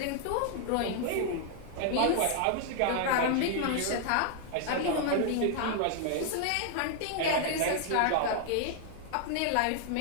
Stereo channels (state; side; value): different; both; correlation 0.00